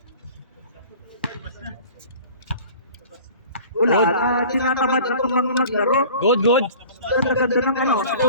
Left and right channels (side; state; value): both; inverted; correlation -0.44